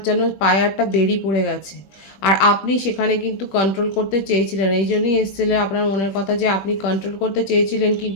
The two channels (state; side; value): late; right; 21 ms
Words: যেন পায়ে একটা বেরি পড়ে গেছে, আর আপনি সেখানে কিন্তু কন্ট্রোল করতে চেয়েছিলেন। এই জন্যই এসেছিলেন আপনার মনের কথা, যে আপনি কন্ট্রোল করতে চেয়েছিলেন